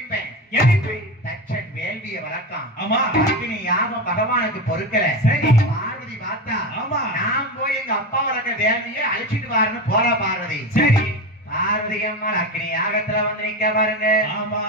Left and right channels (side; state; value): both; normal; correlation 0.21